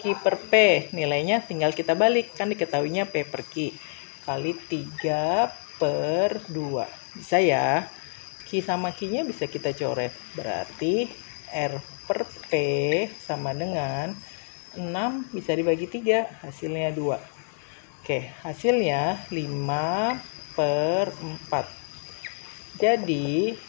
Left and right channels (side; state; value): right; silent; 60 dB below the other